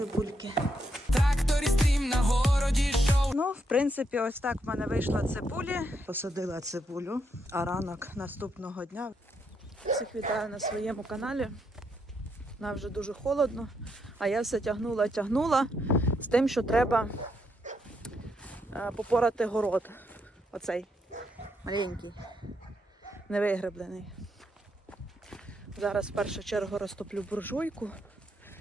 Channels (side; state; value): both; normal; correlation 0.78